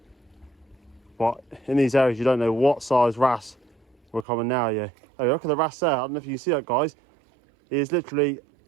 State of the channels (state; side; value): drops out; left; at 4.2 s